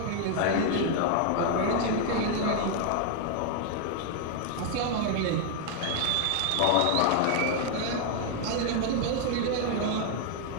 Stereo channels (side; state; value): both; different; correlation 0.00